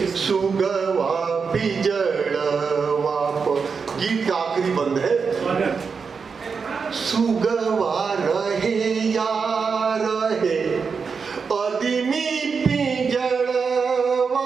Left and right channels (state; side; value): quieter; left; 5.5 dB